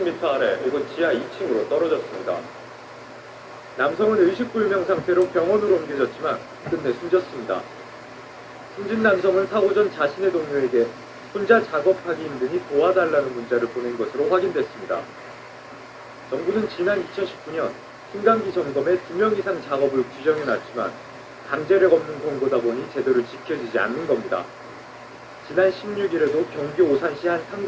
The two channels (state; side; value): identical; both; correlation 1.00